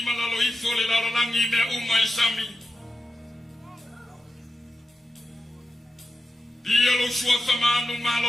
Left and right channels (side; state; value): both; normal; correlation 0.90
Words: malalo ifo le lalo langi mea uma isami. Dia lo suafa manu